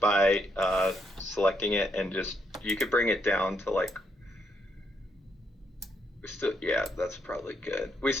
by selecting it, and just you could bring it down to like. Yeah, that's probably good. We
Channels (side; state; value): both; normal; correlation 0.77